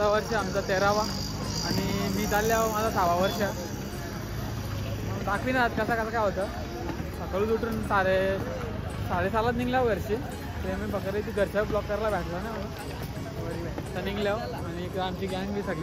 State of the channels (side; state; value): both; identical; correlation 1.00